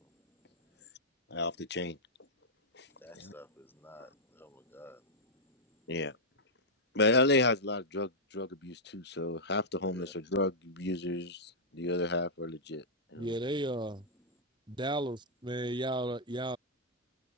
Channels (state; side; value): normal; both; correlation -0.07